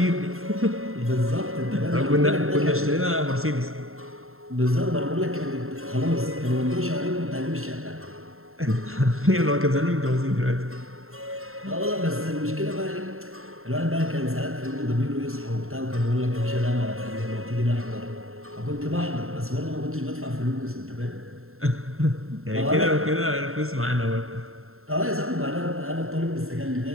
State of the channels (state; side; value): late; left; 0.62 ms